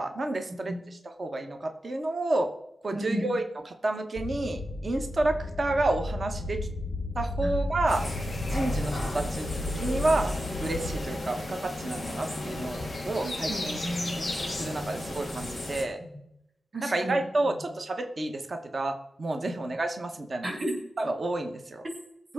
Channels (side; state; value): both; normal; correlation 0.91